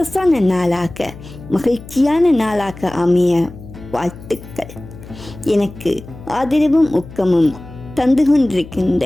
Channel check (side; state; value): left; noise; hum, 16 dB below the sound